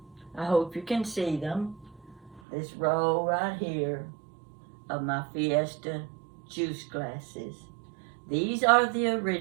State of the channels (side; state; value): left; drops out; at 2.4 s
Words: I hope you can see them. This row right here of my Fiesta juice glasses. These are the